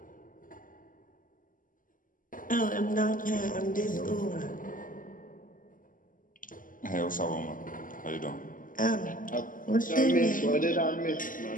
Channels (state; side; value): late; right; 0.39 ms